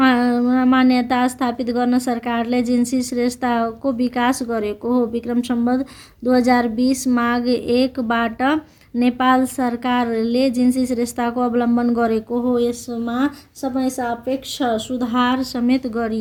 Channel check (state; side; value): identical; both; correlation 1.00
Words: स्थापित गर्न सरकारले जिन्सी श्रेष्ठताको विकास गरेको हो। विक्रम सम्वत 2020 माघ 1 बाट नेपाल सरकारले जिन्सी श्रेष्ठताको अवलम्बन गरेको हो। यसमा समय सापेक्ष सुधार समेत